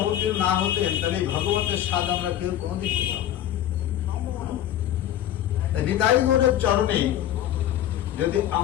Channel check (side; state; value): right; quieter; 11.7 dB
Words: না হতেন, তাহলে ভগবতের স্বাদ আমরা কেউ কোনদিন পেতাম না। নিতাই গৌরের চরণে যদি